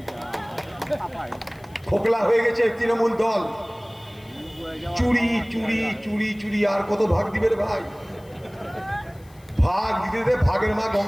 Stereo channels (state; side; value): noise; left; hiss, 28 dB below the sound